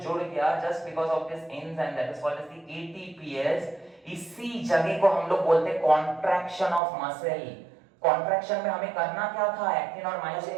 गया just because of this enzyme that is called as the ATPase, इसी जगह को हम लोग बोलते हैं कॉन्ट्रैक्शन ऑफ मसल। कॉन्ट्रैक्शन में हमें करना क्या था? एक्टिन और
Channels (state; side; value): drops out; left; at 6.8 s